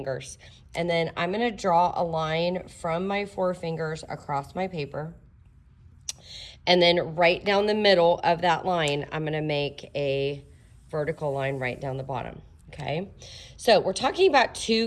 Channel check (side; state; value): both; identical; correlation 1.00